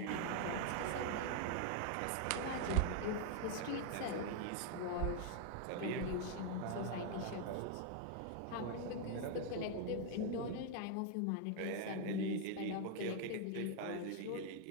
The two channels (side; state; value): both; different; correlation 0.00